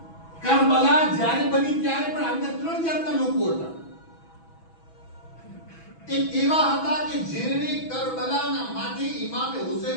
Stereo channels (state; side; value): late; right; 6.1 ms